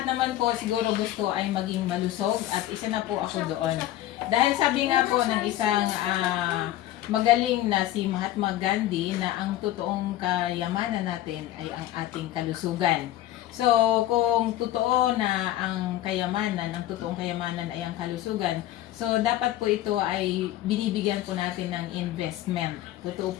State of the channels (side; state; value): right; quieter; 14.0 dB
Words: naman po siguro gusto ay maging malusog at isa na po ako doon. Dahil sabi nga po ng isang magaling na si Mahatma Gandhi na ang totoong kayamanan natin ay ang ating kalusugan. So, kung totoo na ang totoong kayamanan ay ang kalusugan, so dapat po ito ay binibigyan po natin ng investment. Totoo